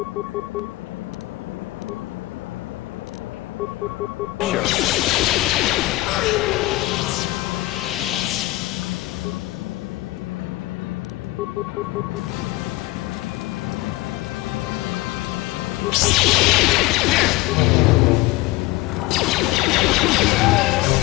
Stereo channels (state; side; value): quieter; right; 19.2 dB